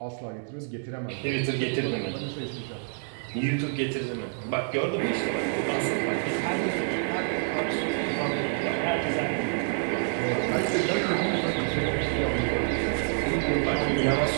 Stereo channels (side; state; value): left; silent; 60 dB below the other